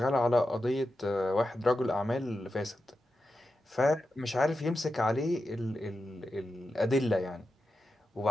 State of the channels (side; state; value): both; normal; correlation 0.90